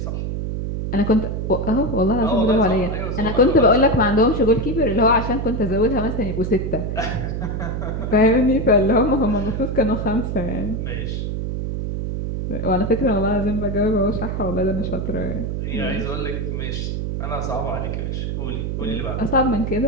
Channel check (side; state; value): right; noise; hum, 3 dB below the sound